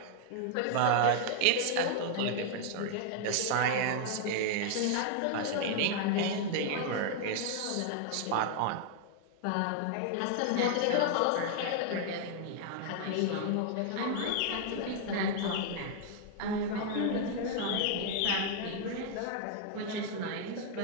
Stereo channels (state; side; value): different; both; correlation -0.01